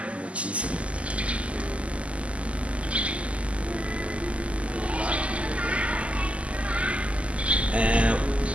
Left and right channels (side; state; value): left; late; 0.061 ms